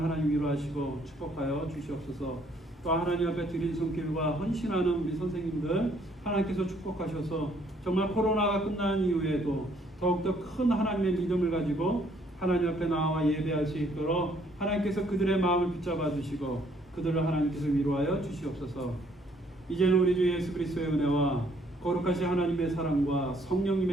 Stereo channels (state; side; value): normal; both; correlation 0.65